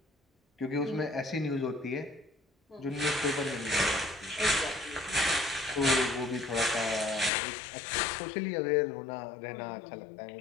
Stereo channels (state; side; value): drops out; right; at 7.3 s